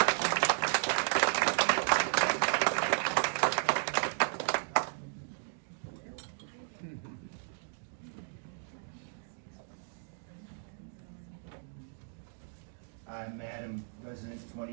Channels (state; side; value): silent; left; 55 dB below the other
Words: I'm Madam resident 20